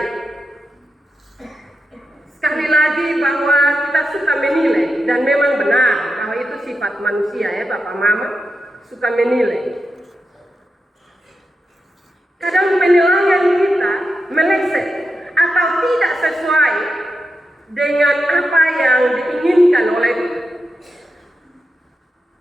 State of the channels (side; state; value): both; normal; correlation 0.88